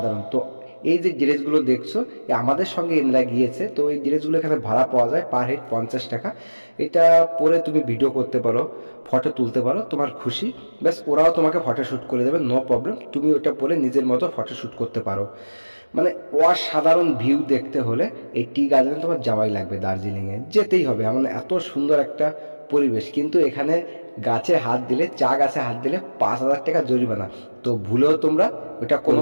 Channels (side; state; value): both; inverted; correlation -1.00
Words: তো এই যে ড্রেসগুলো দেখছো, আমাদের সঙ্গে এনরা গিয়েছে, তো এই ড্রেসগুলো এখানে ভাড়া পাওয়া যায় পার হেড 50 টাকা। এটা পরে তুমি ভিডিও করতে পারো, ফটো তুলতে পারো, তোমার খুশি। ব্যাস, ওরাও তোমাকে ফটো শ্যুট করে দেবে, নো প্রবলেম। তুমি ওটা পরে নিজের মতো ফটো শ্যুট করতে পারো। মানে অসাধারণ ভিউ দেখতে হলে এই টি গার্ডেনে তোমার যাওয়াই লাগবে, দার্জিলিংয়ে যেতেই হবে। এমন এত সুন্দর একটা পরিবেশ। কিন্তু এখানে গাছে হাত দিলে, চা গাছে হাত দিলে 5,000 টাকা জরিমানা। তো ভুলেও তোমরা ওটা কোনো